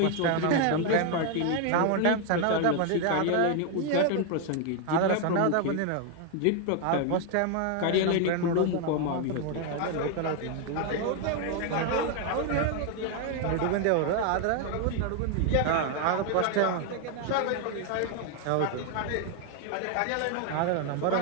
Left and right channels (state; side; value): different; both; correlation 0.01